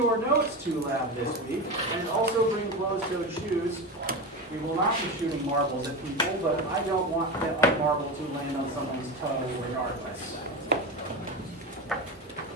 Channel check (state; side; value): normal; both; correlation 0.22